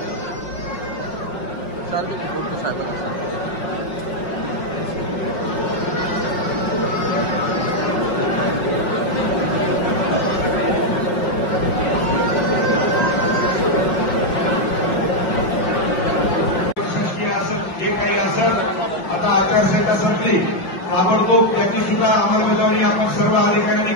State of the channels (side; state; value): right; late; 5.5 ms